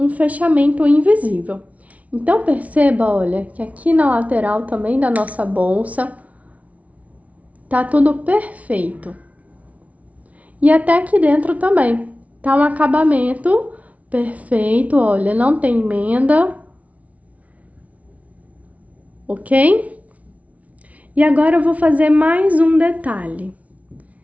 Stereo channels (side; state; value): left; late; 0.068 ms